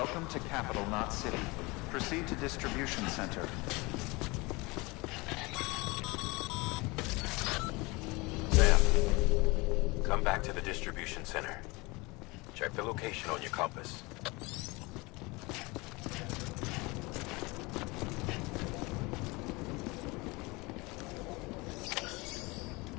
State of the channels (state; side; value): quieter; right; 24.8 dB